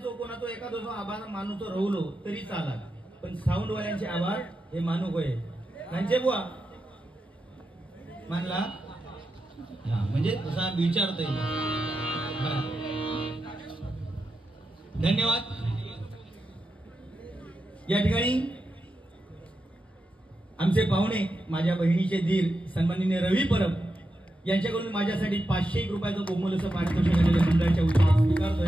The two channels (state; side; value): normal; both; correlation 0.88